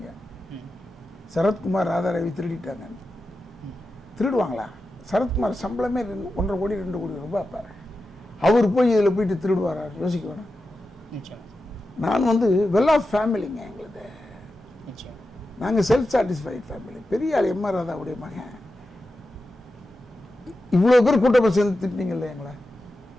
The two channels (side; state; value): both; normal; correlation 0.91